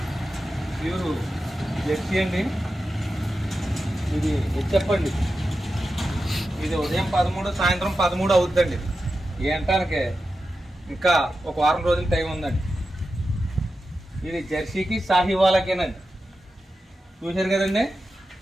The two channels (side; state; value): both; normal; correlation 0.91